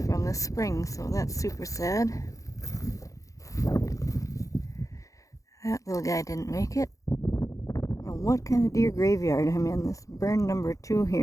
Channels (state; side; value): late; right; 0.16 ms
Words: from this spring, so that's super sad. That little guy didn't make it. What kind of deer graveyard I'm in. This burn number 2